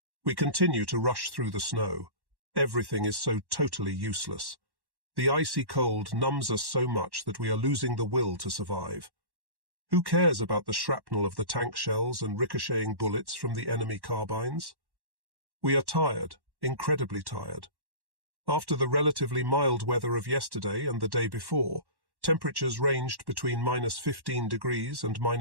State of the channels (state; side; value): late; left; 1.1 ms